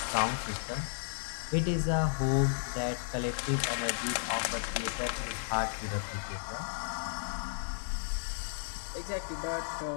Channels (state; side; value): silent; right; digital silence